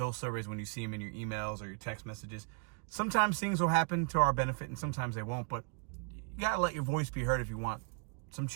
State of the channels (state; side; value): quieter; left; 39.5 dB